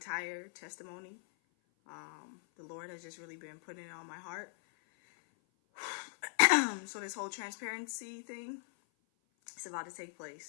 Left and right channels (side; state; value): right; silent; 52 dB below the other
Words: testimony. The Lord has just really been putting it on my heart. So this whole transparency thing, it's about to take